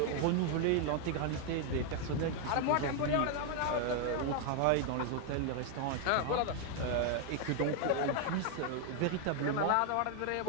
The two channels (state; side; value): different; both; correlation 0.00